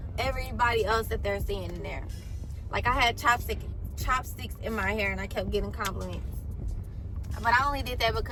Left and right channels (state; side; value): identical; both; correlation 1.00